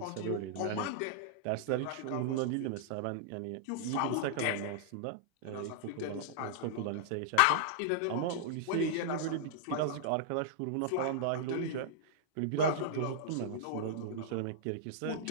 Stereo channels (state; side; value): different; both; correlation -0.01